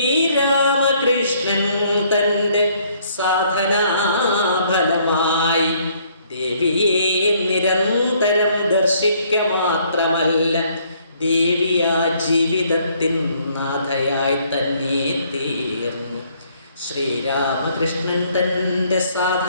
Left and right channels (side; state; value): both; inverted; correlation -0.65